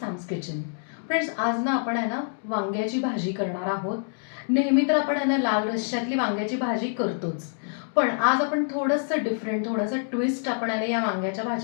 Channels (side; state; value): right; silent; digital silence